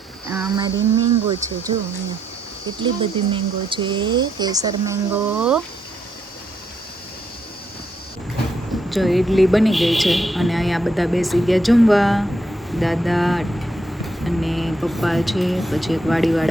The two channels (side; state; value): both; normal; correlation 0.77